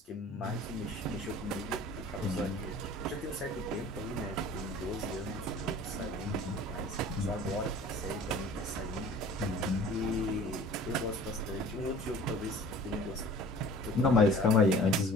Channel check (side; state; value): both; normal; correlation 0.46